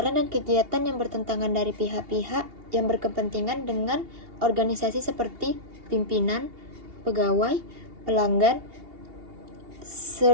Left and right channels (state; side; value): late; left; 2.8 ms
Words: dan kegiatan yang bertentangan dari pihak-pihak yang berkepentingan dengan organisasi seperti pimpinan, pegawai, pelanggan,